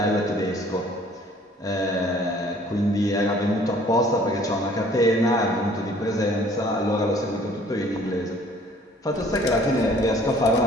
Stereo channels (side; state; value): both; normal; correlation 0.55